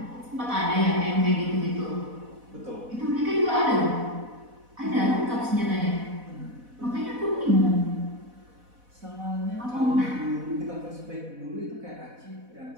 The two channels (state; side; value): late; left; 4.1 ms